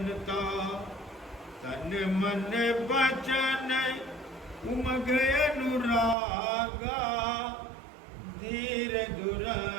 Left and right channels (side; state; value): left; drops out; at 6.2 s